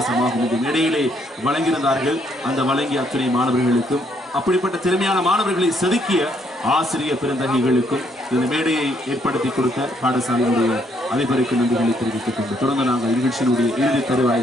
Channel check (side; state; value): both; normal; correlation 0.71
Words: இந்த மேடையிலே வழங்கியிருந்தார்கள். அந்த வழங்கிய அத்துணை மாணவர்களுக்கும் அப்படிப்பட்ட திறமையான மாணவர்களை செதுக்கிய ஆசிரியர் பெருந்தகைகளுக்கும் இந்த மேடையை ஏற்படுத்தி கொடுத்த பாடசாலையினுடைய அதிபருக்கு நன்றிகளை தெரிவித்துக் கொண்டு தொடர்ந்து நாங்கள் நிகழ்ச்சியினுடைய இறுதி